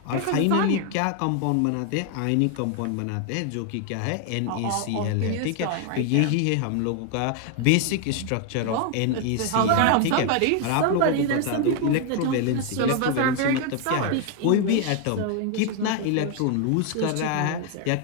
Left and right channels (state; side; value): different; both; correlation 0.00